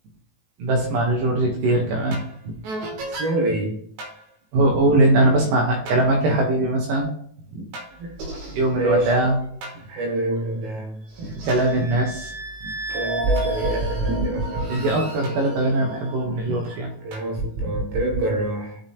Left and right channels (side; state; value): left; late; 18 ms